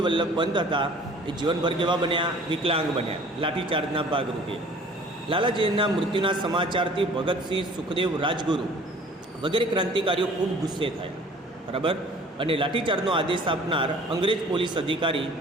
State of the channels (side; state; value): both; normal; correlation 0.50